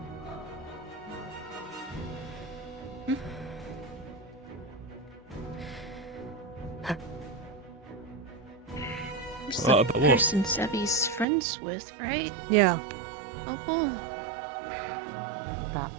Who's What the about what? person Sevi's friends with, right? Yeah. Opal? That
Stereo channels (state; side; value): drops out; left; at 11.2 s